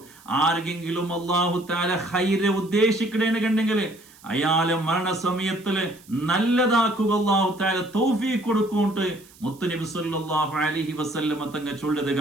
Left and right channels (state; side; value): noise; right; hiss, 25 dB below the sound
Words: ആർക്കെങ്കിലും അല്ലാഹു തആല ഖൈറ് ഉദ്ദേശിക്കണേന്ന് കണ്ടെങ്കിൽ അയാളെ മരണസമയത്തില് നല്ലതാക്കുക അല്ലാഹു തആല തൗഫീഖ് കൊടുക്കുന്നുണ്ട് മുത്തുനബി സല്ലല്ലാഹു അലൈഹി വസല്ലമ തങ്ങൾ ചൊല്ലത്